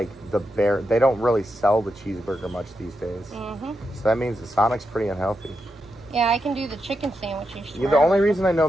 the bare. They don't really sell the cheeseburger much these days. Mm-hmm. So that means the Sonic's pretty unhealthy. Yeah, I can do the chicken sandwiches. Yeah, the only reason I know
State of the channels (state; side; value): normal; both; correlation 0.85